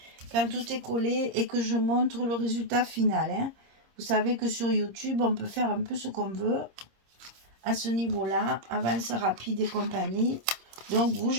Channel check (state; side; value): late; left; 26 ms